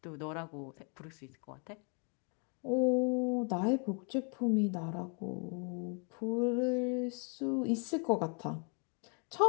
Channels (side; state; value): right; quieter; 38.0 dB